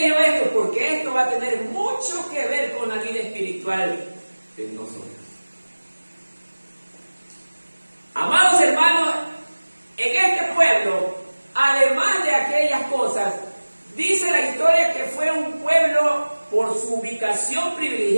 leo esto? Porque esto va a tener mucho que ver con la vida espiritual de nosotros. Amados hermanos, en este pueblo, además de aquellas cosas, dice la historia que fue un pueblo, por su ubicación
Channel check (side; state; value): both; inverted; correlation -1.00